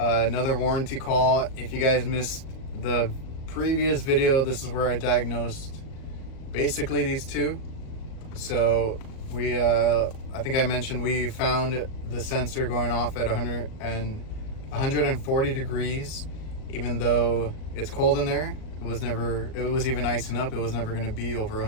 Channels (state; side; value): late; right; 38 ms